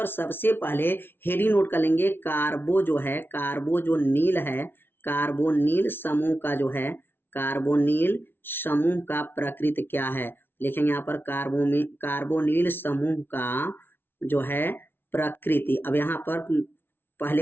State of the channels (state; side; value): late; right; 0.11 ms